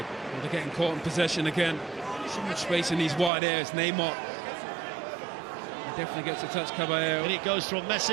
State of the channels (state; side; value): drops out; left; at 3.3 s